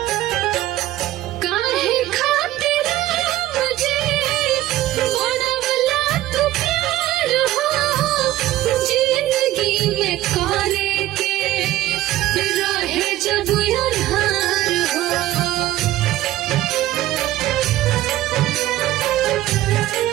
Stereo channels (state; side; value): quieter; left; 14.9 dB